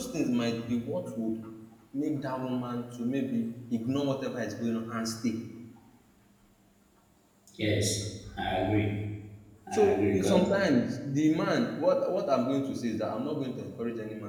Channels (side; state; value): both; identical; correlation 1.00